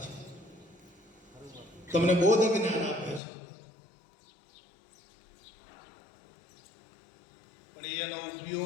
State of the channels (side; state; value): right; drops out; at 3.2 s